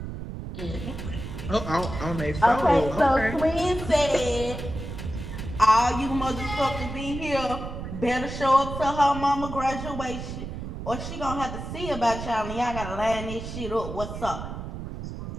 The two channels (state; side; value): noise; right; rumble, 8 dB below the sound